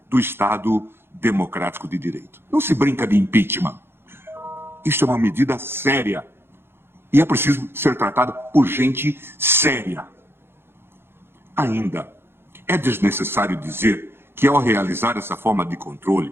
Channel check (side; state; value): left; late; 0.11 ms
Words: do Estado democrático de direito. Não se brinca de impeachment. Isto é uma medida séria e é preciso ser tratada por gente séria. Ainda, é desnecessário dizer que, ao realizar essa forma de controle,